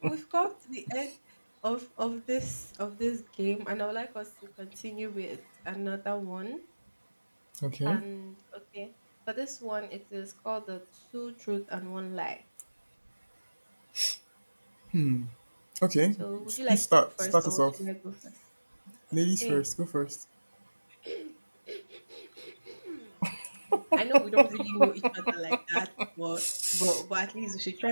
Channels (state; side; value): inverted; both; correlation -1.00